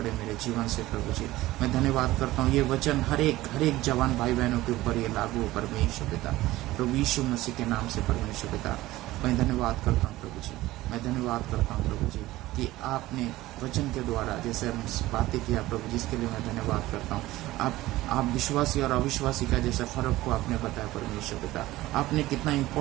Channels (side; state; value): left; quieter; 17.2 dB